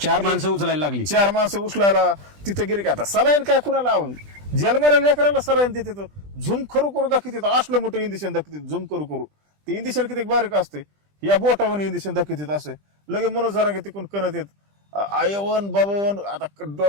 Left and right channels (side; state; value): left; late; 20 ms